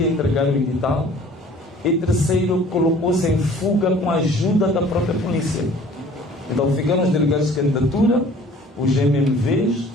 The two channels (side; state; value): both; normal; correlation 0.51